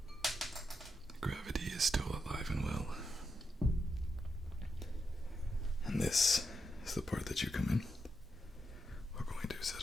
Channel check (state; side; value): normal; both; correlation 0.84